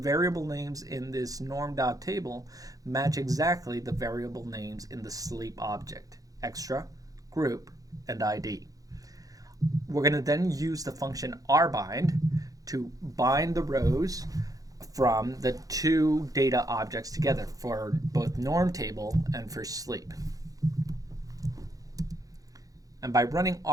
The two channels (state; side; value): late; left; 0.17 ms